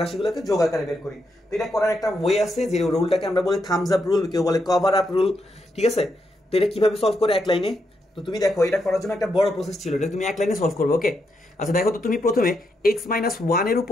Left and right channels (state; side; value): normal; both; correlation 0.81